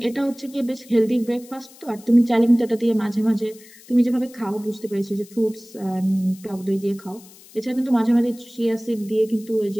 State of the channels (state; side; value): noise; left; hiss, 22 dB below the sound